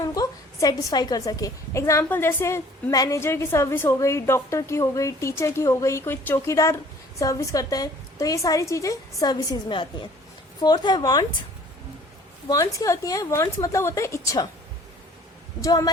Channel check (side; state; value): both; normal; correlation 0.53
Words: उनको सेटिस्फाई कर सके। एग्जाम्पल जैसे मैनेजर की सर्विस हो गई, डॉक्टर की हो गई, टीचर की हो गई, कोई चौकीदार सर्विस करता है, तो ये सारी चीजें सर्विसेज में आती हैं। फोर्थ है वांट्स। वांट्स क्या होती हैं? वांट्स मतलब होता है इच्छा, जो